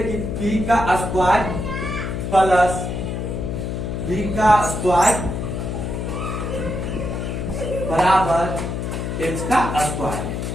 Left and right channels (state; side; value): noise; left; hum, 3 dB below the sound